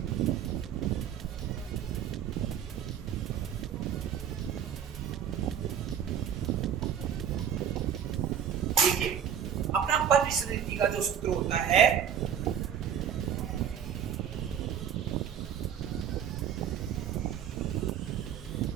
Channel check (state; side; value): quieter; left; 8.6 dB